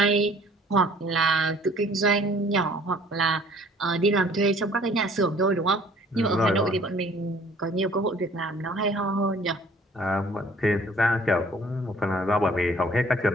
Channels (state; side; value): normal; both; correlation 0.55